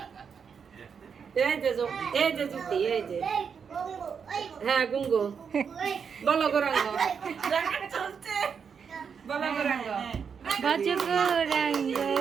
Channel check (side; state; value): left; quieter; 6.5 dB